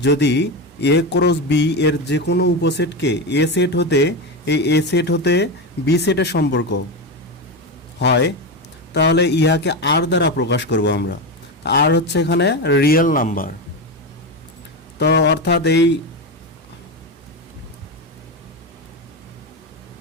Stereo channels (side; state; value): both; normal; correlation 0.16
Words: যদি এ ক্রস বি এর যে কোনো উপসেটকে এ সেট হতে এ সেট হতে বি সেটের সম্পর্ক হয়, তাহলে ইহাকে আর দ্বারা প্রকাশ করব আমরা। আর হচ্ছে এখানে রিয়েল নাম্বার। তো